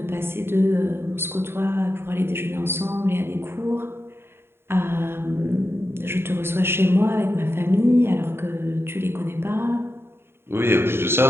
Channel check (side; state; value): left; late; 0.11 ms